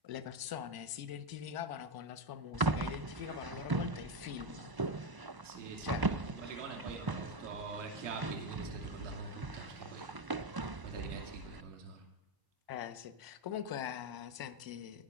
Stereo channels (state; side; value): late; left; 1.0 ms